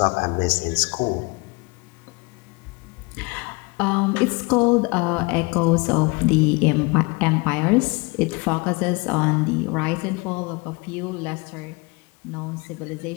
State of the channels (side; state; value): right; quieter; 27.3 dB